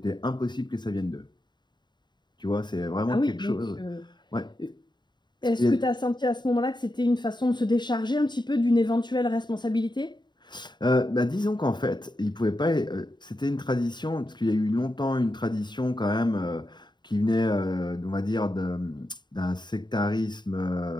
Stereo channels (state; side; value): late; right; 0.21 ms